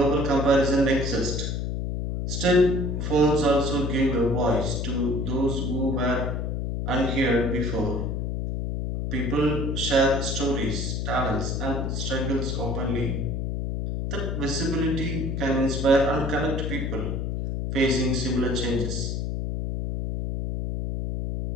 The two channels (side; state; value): left; noise; hum, 2 dB below the sound